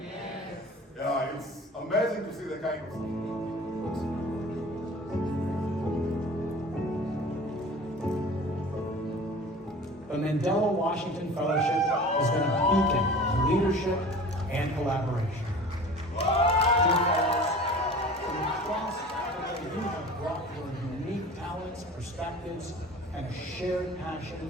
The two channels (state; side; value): normal; both; correlation 0.41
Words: Yeah, it's amazing to see the kind of... The Mandela Washington Fellowship has been a beacon of leadership and collaboration. Dear fellows, from across Africa, you have brought your unique talents, perspectives, and a shared